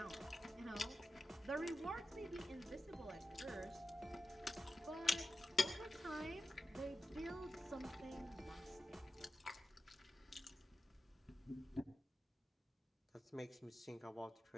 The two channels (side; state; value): both; normal; correlation 0.92